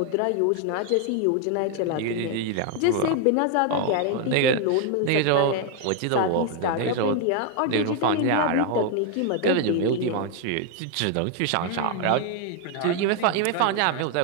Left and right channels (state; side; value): different; both; correlation 0.00